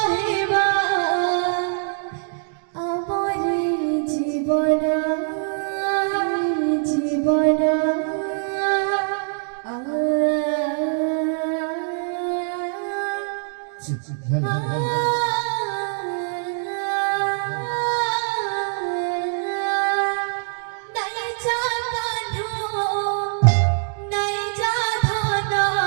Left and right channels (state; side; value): silent; left; 63 dB below the other